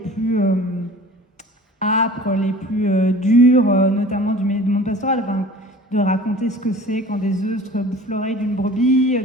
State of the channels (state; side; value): normal; both; correlation 0.43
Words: âpres, les plus durs, notamment du monde pastoral. Enfin, de raconter ce que c'est quand des œufs bouffent l'oreille d'une brebis,